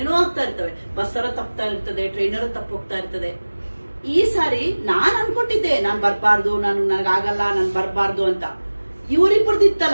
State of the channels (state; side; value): inverted; both; correlation -1.00